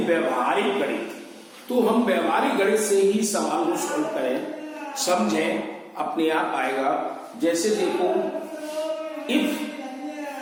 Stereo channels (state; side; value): identical; both; correlation 1.00